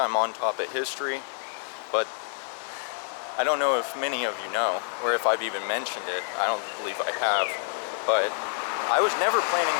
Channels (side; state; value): right; silent; 60 dB below the other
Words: on top of history, but I don't know if many of you know, or if I've even mentioned it. I don't believe I have, but I was never planning